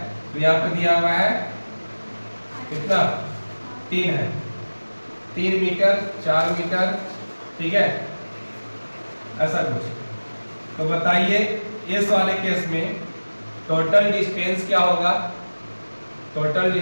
तो यहाँ पे दिया हुआ है कितना 3 है, 3 मीटर 4 मीटर, ठीक है, ऐसा कुछ। तो बताइए इस वाले केस में टोटल डिस्टेंस क्या होगा, टोटल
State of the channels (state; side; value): inverted; both; correlation -1.00